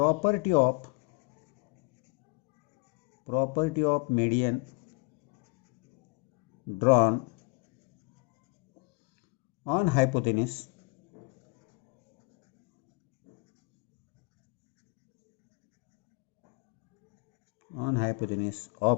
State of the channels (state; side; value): quieter; right; 30.4 dB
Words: of median drawn on hypotenuse